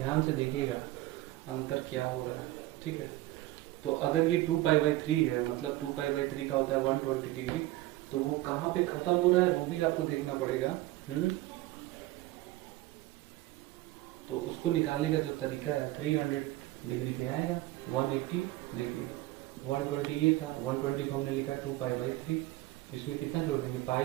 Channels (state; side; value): quieter; left; 17.4 dB